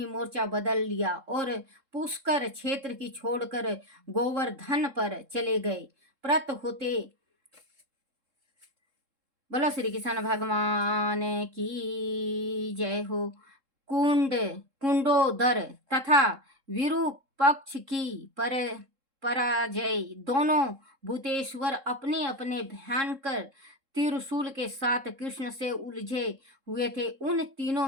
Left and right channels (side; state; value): left; late; 3.7 ms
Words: मोर्चा बदल लिया और पुष्कर क्षेत्र की छोड़कर गोवर्धन पर चले गए। प्रत होते बोलो श्री कृष्ण भगवान की जय हो। कुंडोदर तथा विरूपक्ष की पराजय। दोनों भूतेश्वर अपने अपने भयंकर त्रिशूल के साथ कृष्ण से उलझे हुए थे। उन तीनों